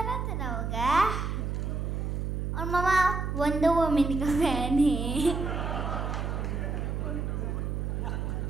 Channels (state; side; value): noise; right; hum, 2 dB below the sound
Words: होगा, और और मामा वंडर वुमन का फैन है।